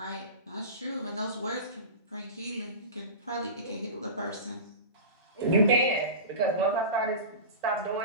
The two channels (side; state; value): both; inverted; correlation -0.31